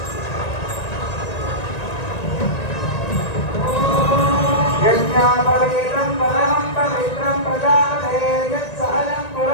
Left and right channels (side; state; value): right; late; 1.9 ms